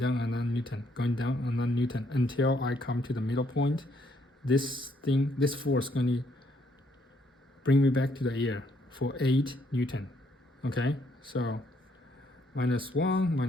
another Newton, going down another Newton, until I come to the middle point. This force is going to bring me back to the air for 8 Newton. Okay, so -1,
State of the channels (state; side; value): normal; both; correlation 0.70